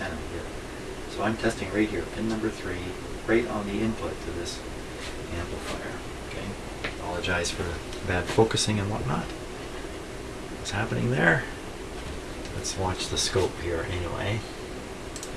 here. So I'm testing right here, pin number 3, right on the input to this amplifier. Okay, apologize for the bad focusing and whatnot. What's happening there? Let's watch the scope here anyway.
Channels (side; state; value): both; identical; correlation 1.00